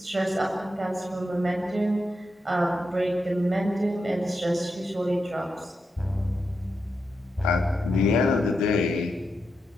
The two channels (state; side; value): normal; both; correlation 0.86